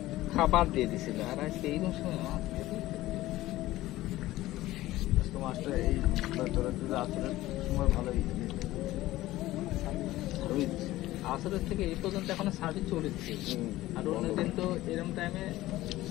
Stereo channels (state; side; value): quieter; right; 16.6 dB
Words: খাবার দিয়ে দিছিল, আর আজকে এইরকম সময় মাছ দিয়ে দিছে। আজকে মাছটা এই তোরা যদি আসরের সময় ভালোই ভালোই দিছে। আসরের থেকে এই পর্যন্ত এখনো সার্ভিস চলেছে, আর অন্যদিন তো এরকম টাইমে